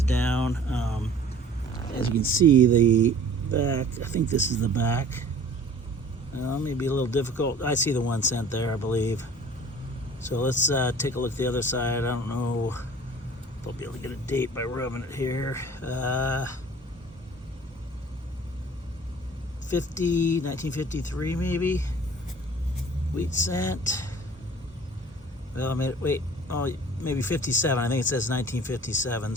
down. As you can see, the back. I think this is the back. Maybe a little difficult. I see the 1 cent there, I believe. So let's take a look at the other side. I don't know if I'll be able to get a date by rubbing it here. 1953 maybe. Wheat cent. Well, I mean, wait. Oh, maybe 57. I think it says 1957.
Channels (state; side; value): normal; both; correlation 0.47